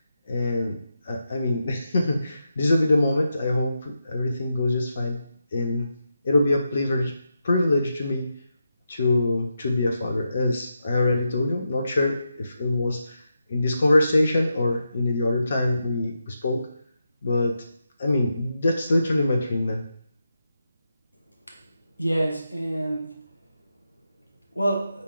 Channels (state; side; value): inverted; both; correlation -0.86